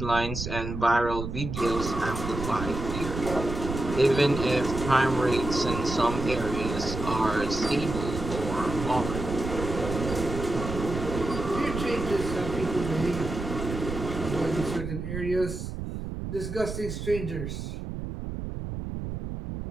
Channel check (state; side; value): noise; right; rumble, 6 dB below the sound